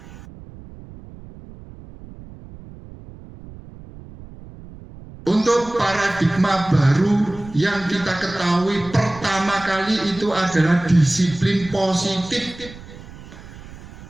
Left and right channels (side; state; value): right; noise; rumble, 17 dB below the sound